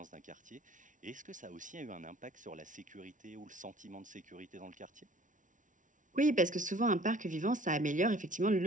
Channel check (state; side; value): late; left; 0.37 ms